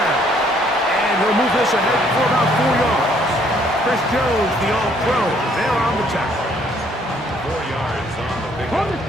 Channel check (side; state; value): both; normal; correlation 0.64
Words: And he'll move this ahead for about 4 yards. Chris Jones, the all-pro, there on the tackle. 4 yards on the